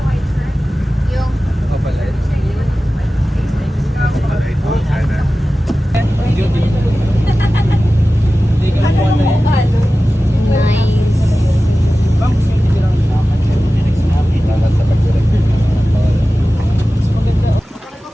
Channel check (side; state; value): both; normal; correlation 0.95